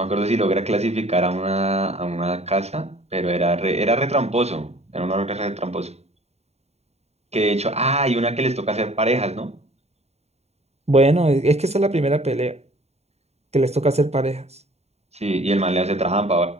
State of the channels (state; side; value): late; left; 0.31 ms